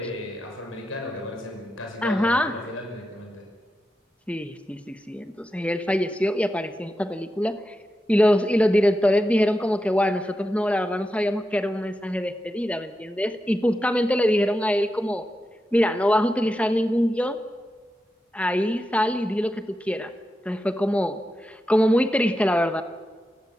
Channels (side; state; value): both; normal; correlation 0.89